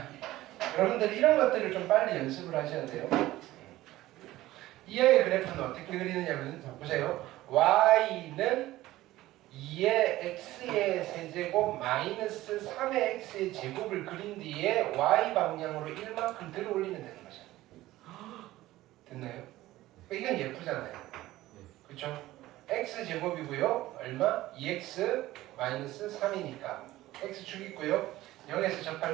여러분들 이런 것들을 좀 빨리 연습을 하셔야 돼요. 이 아이의 그래프는 어떻게 그리느냐면, 보세요. y는 2의 x의 세제곱 마이너스 3의 x의 제곱을 그린 뒤에 y 방향으로 1만큼 들어 올리면 되는 거죠. 됐나요? 이건 예쁘잖아요. 그렇죠? x 제곱이고요. 얼마? 2x 마이너스 3이니까 x축 있고요. 0에서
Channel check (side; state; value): left; quieter; 16.4 dB